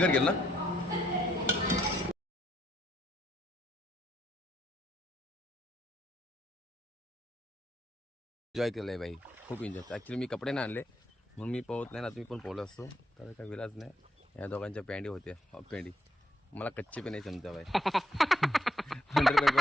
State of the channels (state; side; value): normal; both; correlation 0.74